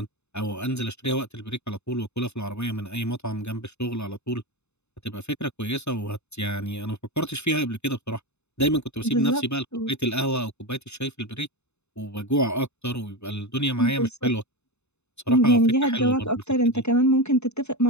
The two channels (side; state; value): right; late; 0.81 ms